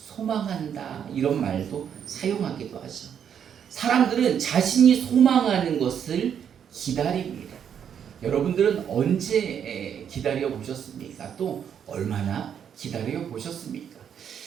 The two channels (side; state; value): left; quieter; 8.4 dB